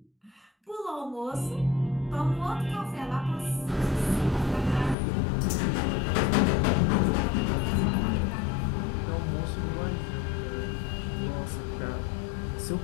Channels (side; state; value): right; drops out; at 5.0 s